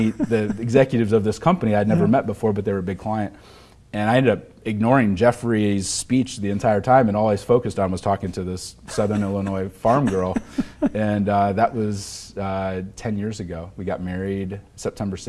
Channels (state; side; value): identical; both; correlation 1.00